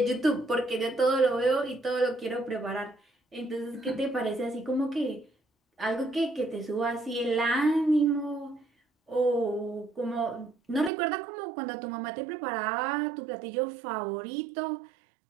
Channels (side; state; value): left; drops out; at 10.9 s